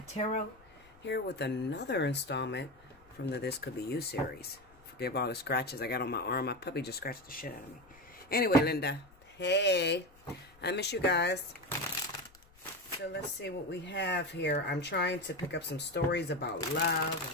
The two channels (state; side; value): noise; left; rumble, 27 dB below the sound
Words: here with another installment from the This Could Be You series. Forgive all the scratches I got on my arm. My puppy just scratched the shit out of me. Anyway, Linda. Hey. I miss you guys. So let's see what we have here. I'm trying to pick up some stories about love,